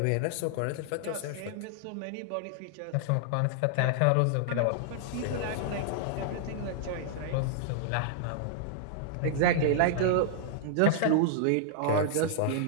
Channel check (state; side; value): different; both; correlation -0.01